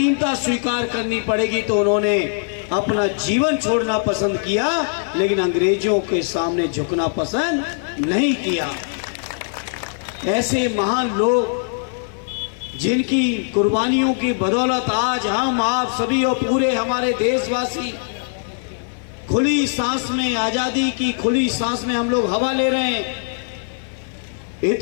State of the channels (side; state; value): right; silent; 56 dB below the other